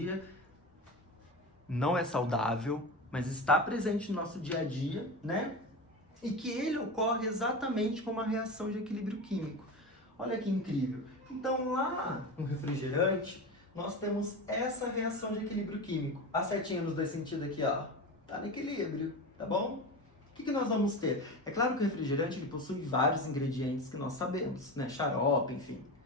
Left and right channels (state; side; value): normal; both; correlation 0.25